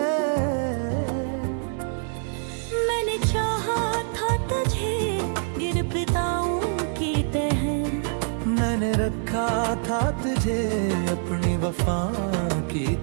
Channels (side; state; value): left; silent; digital silence